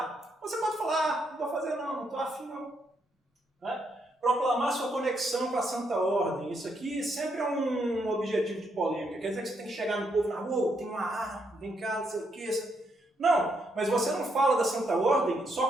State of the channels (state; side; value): normal; both; correlation 0.77